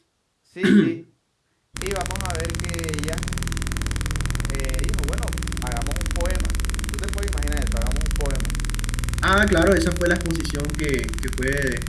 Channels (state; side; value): identical; both; correlation 1.00